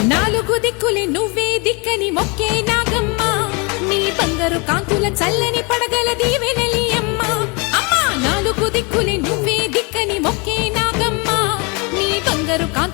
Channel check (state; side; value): quieter; right; 30.0 dB